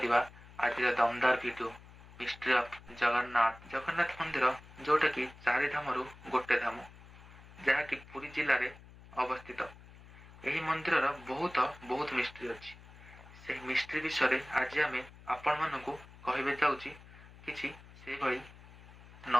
आज दमदार video mystery of Jagannath. Jagannath मंदिर जोटा कि चारि धाम गोटे धाम जहाँकि पुरी जिले में अवस्थित। यही मंदिर बहुत बहुत मिस्ट्री अच्छी। से मिस्ट्री विषय आज आम आपण मानू कहबे जाऊँगी किसी से भली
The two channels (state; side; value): noise; left; hum, 20 dB below the sound